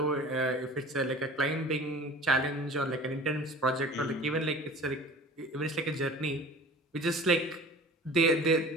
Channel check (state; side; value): normal; both; correlation 0.41